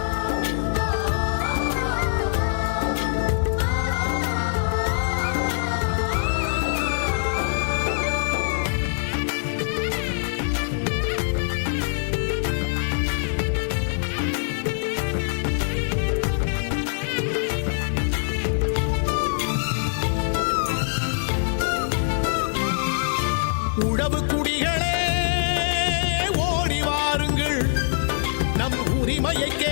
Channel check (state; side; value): silent; right; 63 dB below the other